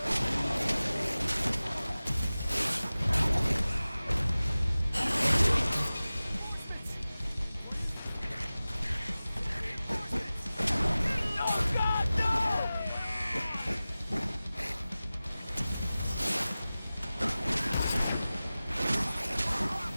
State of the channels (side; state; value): both; inverted; correlation -0.97